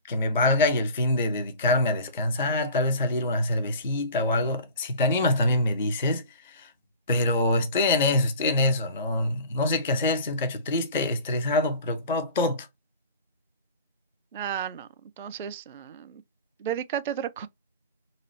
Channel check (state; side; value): inverted; both; correlation -0.40